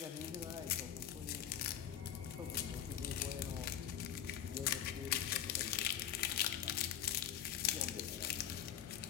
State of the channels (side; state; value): right; quieter; 10.4 dB